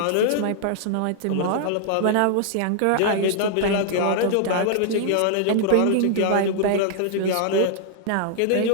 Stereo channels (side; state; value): both; different; correlation -0.01